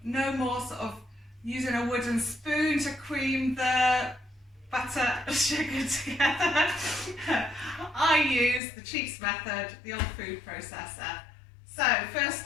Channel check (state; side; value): drops out; right; at 8.6 s